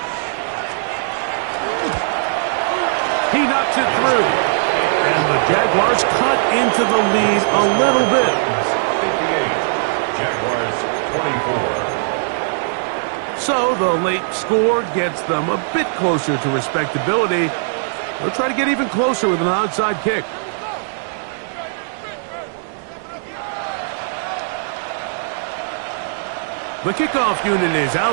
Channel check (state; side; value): silent; left; 66 dB below the other